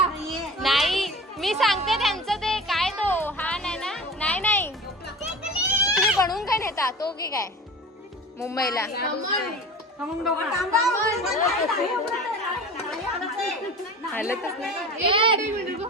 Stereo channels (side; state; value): both; normal; correlation 0.36